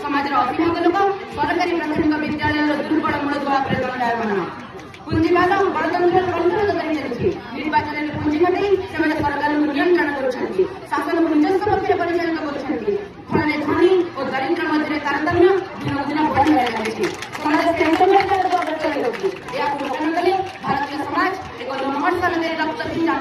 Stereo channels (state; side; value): identical; both; correlation 1.00